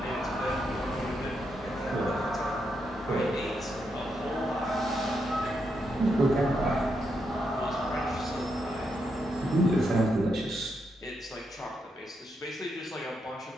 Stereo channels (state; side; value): normal; both; correlation 0.81